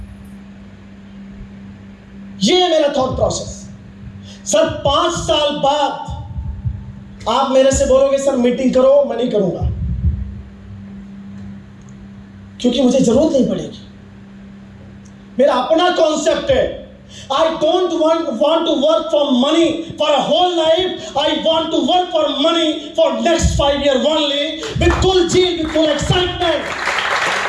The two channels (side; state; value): both; identical; correlation 1.00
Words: ये है मेरा थॉट प्रोसेस। सर 5 साल बाद आप मेरे से बोलोगे सर मीटिंग करो, मैं नहीं करूंगा, क्योंकि मुझे जरूरत नहीं पड़ेगी। मेरा अपना कॉन्सेप्ट है। I don't want to work for money for a whole life. I want to work for money for next 5 years only, with full zeal, with full excitement.